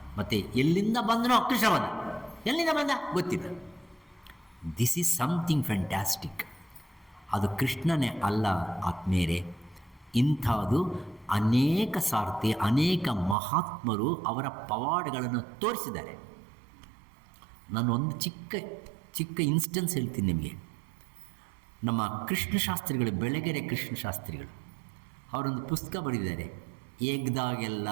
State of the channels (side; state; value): left; drops out; at 13.4 s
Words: ಮತ್ತು ಎಲ್ಲಿಂದ ಬಂದನೋ ಕೃಷ್ಣ ಬಂದ, ಎಲ್ಲಿಂದ ಬಂದ ಗೊತ್ತಿಲ್ಲ. This is something fantastic. ಅದು ಕೃಷ್ಣನೇ ಅಲ್ಲ ಆತ್ಮೇರೆ, ಇಂಥದ್ದು ಅನೇಕ ಸಾರ್ತಿ ಅನೇಕ ಮಹಾತ್ಮರು ಅವರ ಪವಾಡಗಳನ್ನು ತೋರಿಸಿದ್ದಾರೆ. ನಾನು ಒಂದು ಚಿಕ್ಕ ಇನ್ಸ್ಟೆನ್ಸ್ ಹೇಳ್ತೀನಿ ನಿಮಗೆ. ನಮ್ಮ ಕೃಷ್ಣಶಾಸ್ತ್ರಿಗಳು, ಬೆಳಗೆರೆ ಕೃಷ್ಣಶಾಸ್ತ್ರಿಗಳು, ಅವರೊಂದು ಪುಸ್ತಕ ಬರೆದಿದ್ದಾರೆ, ಎಗ್ದಾಗೆಲ್ಲ